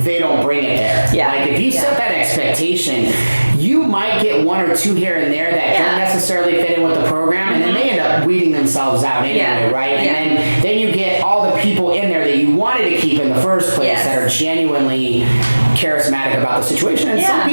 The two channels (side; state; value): both; inverted; correlation -1.00